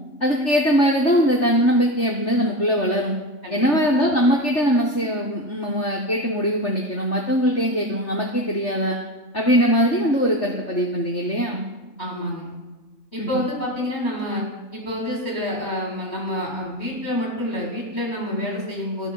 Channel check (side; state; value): right; late; 3.4 ms